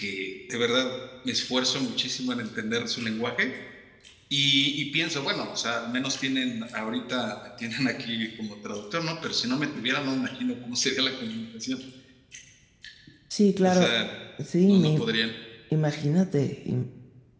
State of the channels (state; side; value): identical; both; correlation 1.00